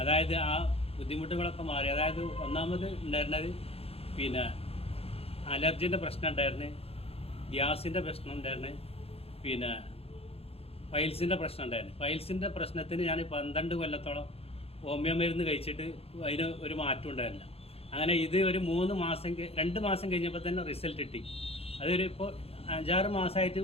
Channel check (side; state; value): right; late; 0.29 ms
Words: അതായത് ആ ബുദ്ധിമുട്ടുകളൊക്കെ മാറി. അതായത് ഒന്നാമത് ഉണ്ടായിരുന്നത് പിന്നെ അലർജിൻ്റെ പ്രശ്നം ഉണ്ടായിരുന്നു, ഗ്യാസിൻ്റെ പ്രശ്നം ഉണ്ടായിരുന്നു, പിന്നെ പൈൽസിൻ്റെ പ്രശ്നം ഉണ്ടായിരുന്നു. പൈൽസിൻ്റെ പ്രശ്നത്തിന് ഞാൻ 12 കൊല്ലത്തോളം ഹോമിയോ മരുന്ന് കഴിച്ചിട്ട് അതിന് ഒരു മാറ്റം ഉണ്ടായിരുന്നില്ല. അങ്ങനെ ഇത് ഒരു 2 മാസം കഴിഞ്ഞപ്പോൾ തന്നെ റിസൾട്ട് കിട്ടി. അതൊരു ഇപ്പോൾ 5-6 മാസമായിട്ട്